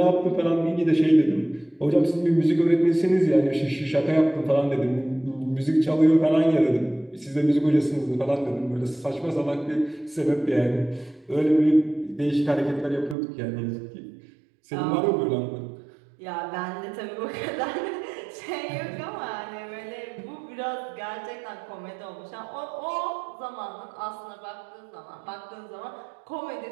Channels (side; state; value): left; drops out; at 13.2 s